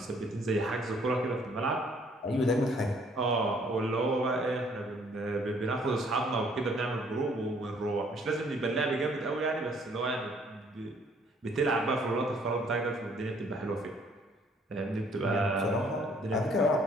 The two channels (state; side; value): normal; both; correlation 0.62